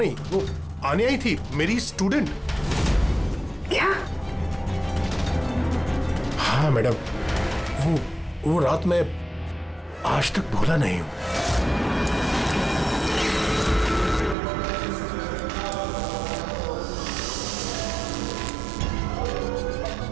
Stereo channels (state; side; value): drops out; left; at 14.4 s